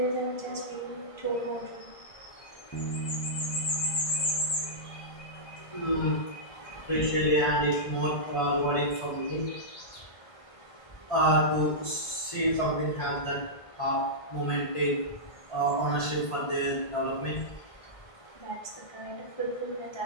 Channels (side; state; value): right; late; 1.5 ms